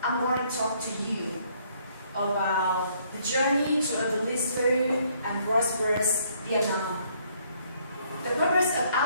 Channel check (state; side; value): inverted; both; correlation -0.66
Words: I'm going to talk to you about the journey to a blissful and prosperous Vietnam. The purpose of